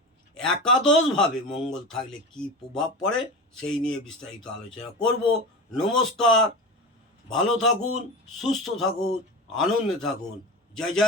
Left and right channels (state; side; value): normal; both; correlation 0.28